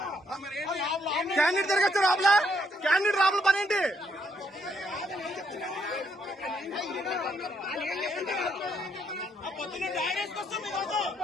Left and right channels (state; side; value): normal; both; correlation 0.73